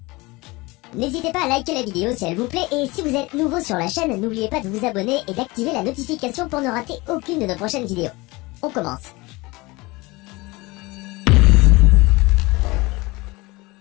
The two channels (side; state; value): right; quieter; 23.0 dB